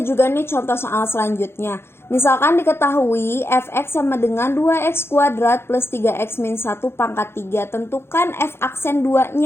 nih contoh soal selanjutnya. Misalkan diketahui fx sama dengan 2x kuadrat plus 3x min 1 pangkat 3. Tentukan f aksen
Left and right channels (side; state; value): right; late; 0.12 ms